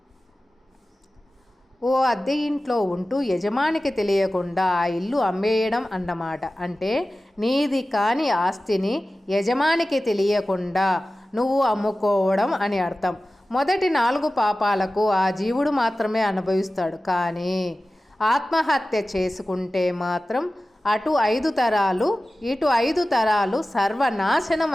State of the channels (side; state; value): both; normal; correlation 0.96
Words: ఓ అద్దె ఇంట్లో ఉంటూ యజమానికి తెలియకుండా ఆ ఇల్లు అమ్మేయడం అన్నమాట. అంటే నీది కాని ఆస్తిని యజమానికి తెలియకుండా నువ్వు అమ్ముకోవడం అని అర్థం. మొదటి 4 పాపాలకు ఆ జీవుడు మాత్రమే అనుభవిస్తాడు. కానీ ఆత్మహత్య చేసుకుంటే మాత్రం అటు 5 తరాలు ఇటు 5 తరాలు సర్వనాశనం